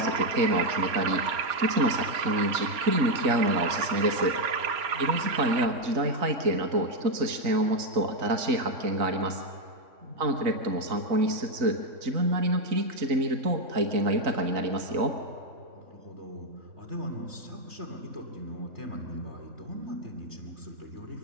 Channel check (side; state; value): left; late; 3.9 ms